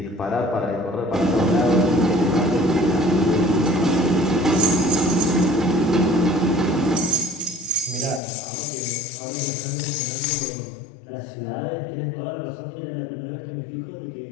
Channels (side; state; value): right; drops out; at 8.2 s